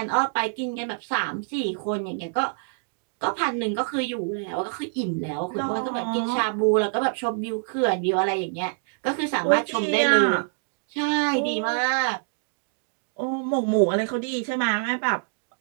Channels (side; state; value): left; silent; digital silence